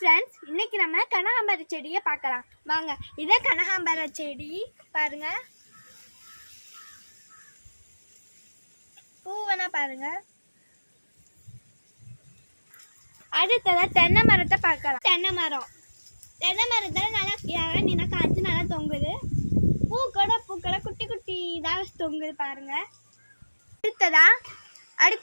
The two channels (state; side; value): inverted; both; correlation -1.00